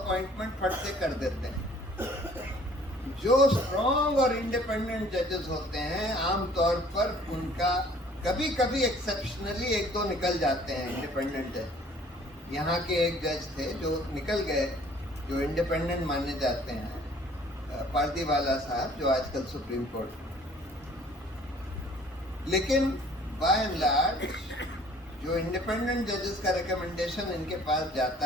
फट से कर देते हैं। जो स्ट्रॉन्ग और इंडिपेंडेंट जजेस होते हैं आमतौर पर उनका कभी कभी एक्सेप्शनली 1-2 निकल जाते हैं इंडिपेंडेंट जज। यहाँ के एक जज थे जो निकल गए, जो इंडिपेंडेंट माने जाते हैं, पारदीवाला साहब, जो आजकल सुप्रीम कोर्ट। लेकिन बाय एंड लार्ज जो इंडिपेंडेंट जजेस का रिकमेंडेशन इनके पास जाता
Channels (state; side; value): normal; both; correlation 0.55